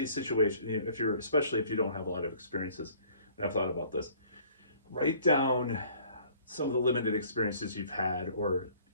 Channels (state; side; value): inverted; both; correlation -0.55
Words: situations. You know, especially if you don't have a lot of experiences, and I've thought about this, write down some of the limited experiences you've had, or